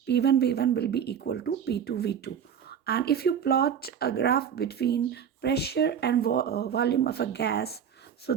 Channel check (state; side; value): quieter; left; 8.2 dB